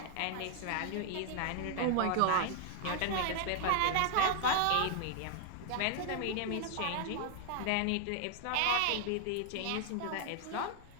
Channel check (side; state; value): both; different; correlation 0.00